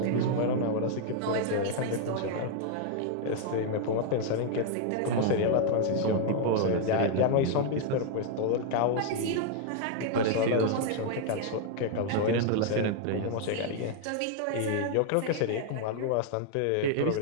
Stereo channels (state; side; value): different; both; correlation 0.00